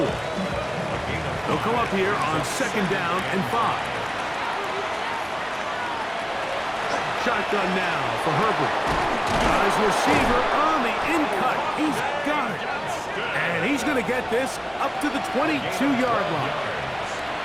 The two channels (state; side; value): identical; both; correlation 1.00